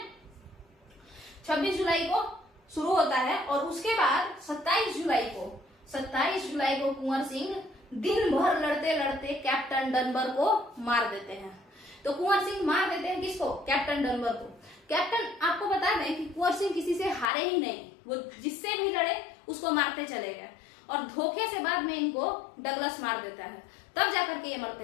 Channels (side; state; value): right; drops out; at 17.3 s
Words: 26 जुलाई को शुरू होता है, और उसके बाद 27 जुलाई को कुंवर सिंह दिन भर लड़ते लड़ते कैप्टन डनबर को मार देते हैं। तो कुंवर सिंह मार देते हैं किसको, कैप्टन डनबर को। कैप्टन, आपको बता दें कि कुंवर सिंह किसी से हारे ही नहीं, वो जिससे भी लड़े उसको मारते चले गए, और धोखे से बाद में इनको डगलस मार देता है, तब जाकर के ये